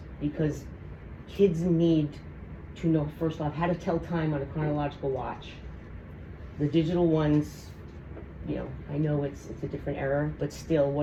because kids need to know, first off, how to tell time on a chronological watch. The digital ones, you know, I know it's a different era, but still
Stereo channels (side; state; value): both; identical; correlation 1.00